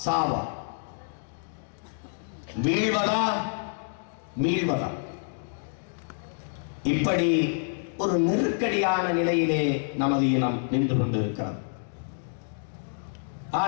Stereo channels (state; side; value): silent; right; digital silence